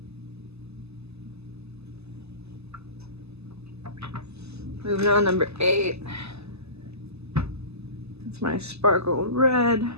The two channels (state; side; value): late; left; 0.79 ms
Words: Moving on, number 8. It's my sparkle red.